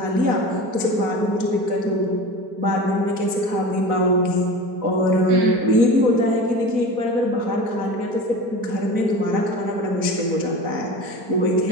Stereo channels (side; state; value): left; late; 4.1 ms